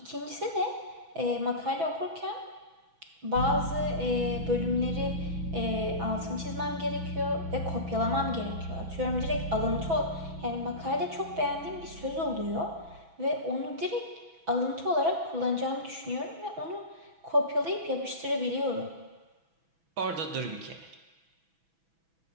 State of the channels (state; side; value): late; left; 6.1 ms